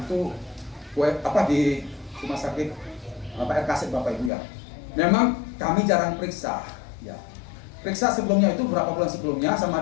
di rumah sakit RKS Bapak Ibu ya. Memang kami jarang periksa ya. Periksa sebelumnya itu berapa bulan sebelumnya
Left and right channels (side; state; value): right; drops out; at 4.3 s